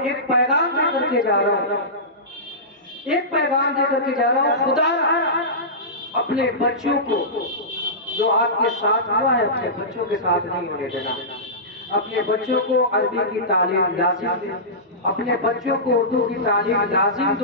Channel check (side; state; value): both; normal; correlation -0.19